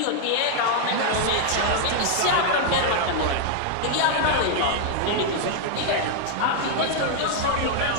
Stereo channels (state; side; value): different; both; correlation 0.00